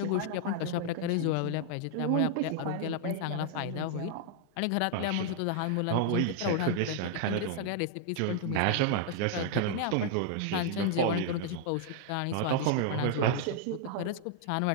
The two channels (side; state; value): both; different; correlation -0.01